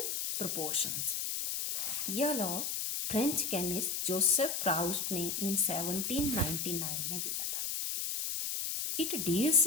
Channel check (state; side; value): noise; left; hiss, 1 dB below the sound